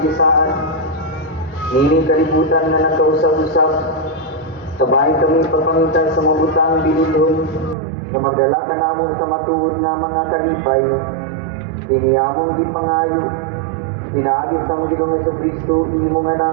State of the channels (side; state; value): left; drops out; at 7.8 s